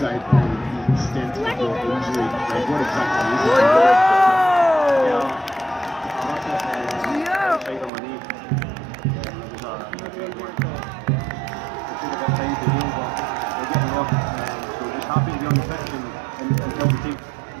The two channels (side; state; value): left; drops out; at 7.9 s